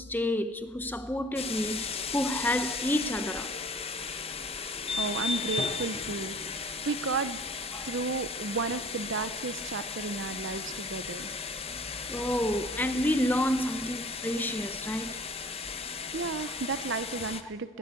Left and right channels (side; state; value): both; normal; correlation 0.47